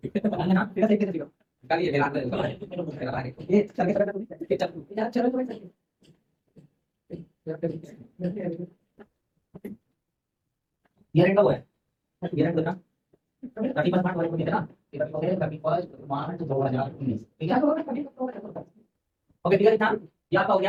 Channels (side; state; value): both; identical; correlation 1.00